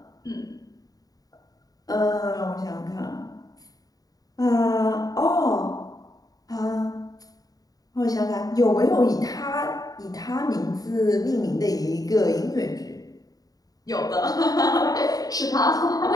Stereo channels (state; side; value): late; right; 0.18 ms